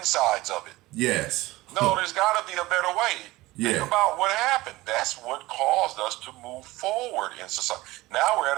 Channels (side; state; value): left; quieter; 19.1 dB